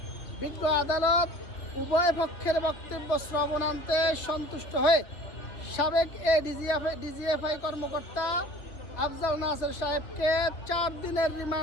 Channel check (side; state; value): right; late; 2.8 ms